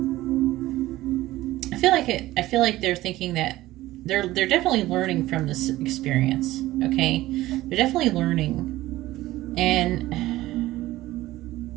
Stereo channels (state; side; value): quieter; left; 16.6 dB